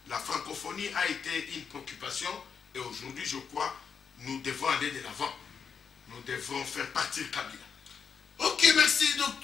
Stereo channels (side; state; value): right; quieter; 6.5 dB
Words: la francophonie a été une préoccupation et aujourd'hui, je crois, nous devons aller de l'avant. Nous devons faire partir Kabila. Ok, merci